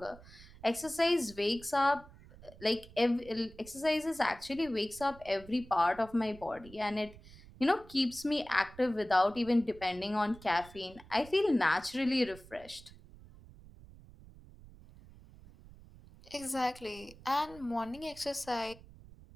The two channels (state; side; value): noise; right; rumble, 20 dB below the sound